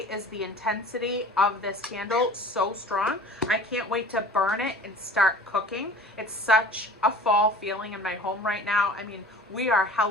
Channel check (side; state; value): both; normal; correlation 0.43